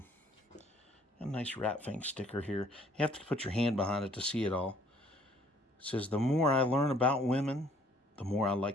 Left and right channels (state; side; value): normal; both; correlation 0.60